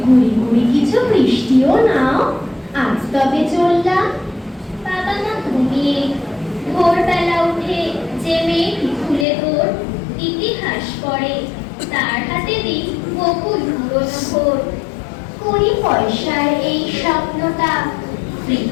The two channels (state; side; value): drops out; right; at 9.2 s